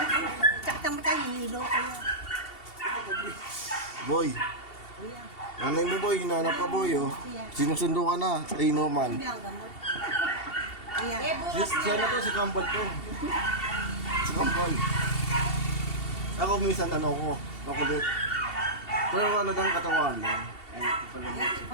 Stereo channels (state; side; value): late; right; 2.7 ms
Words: sa mata, hilo kaya. Boy. Nanay mo boy, hinahanap ka boy oh. Sinusundo ka na. Ay no man. Hindi ang gamot. Ayan. Siya na to, si Kambal to. Si Kambal. Ako minsan ano ko, makulit. Pero ano lang katawan lang.